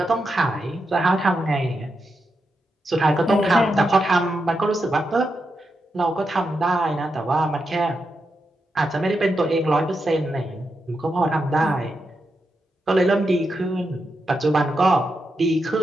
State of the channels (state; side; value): normal; both; correlation 0.86